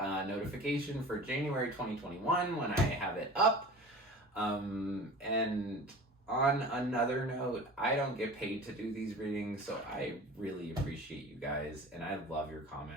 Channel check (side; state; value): both; normal; correlation 0.38